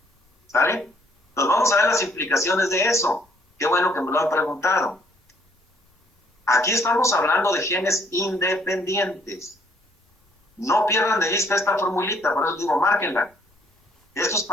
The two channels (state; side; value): normal; both; correlation 0.65